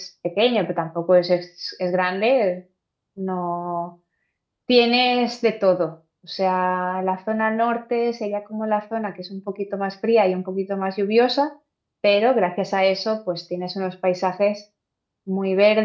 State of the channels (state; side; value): identical; both; correlation 1.00